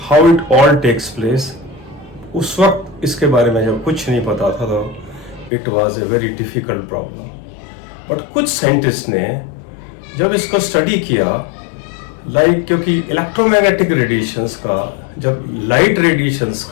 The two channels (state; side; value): drops out; right; at 5.5 s